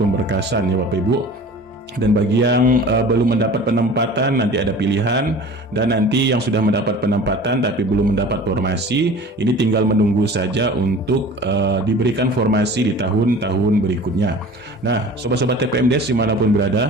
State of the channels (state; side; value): normal; both; correlation 0.42